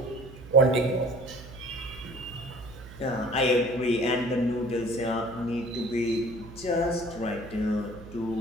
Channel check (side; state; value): right; noise; hum, 16 dB below the sound